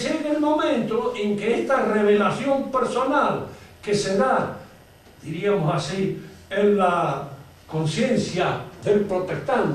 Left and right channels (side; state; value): both; identical; correlation 1.00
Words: el momento en que esta revelación personal que se da, diríamos así, en la conciencia del